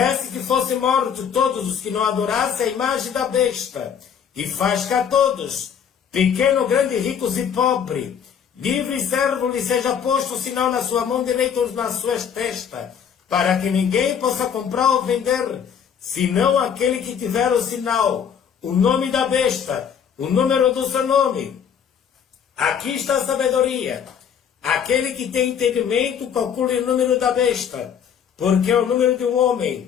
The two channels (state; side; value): quieter; right; 7.8 dB